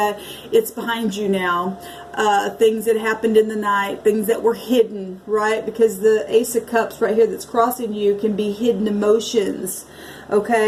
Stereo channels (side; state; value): both; identical; correlation 1.00